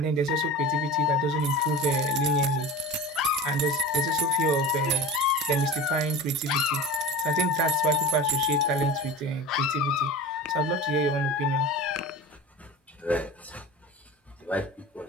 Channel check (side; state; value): both; normal; correlation 0.33